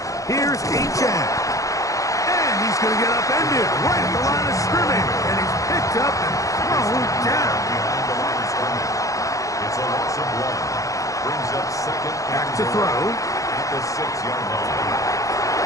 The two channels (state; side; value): late; right; 0.16 ms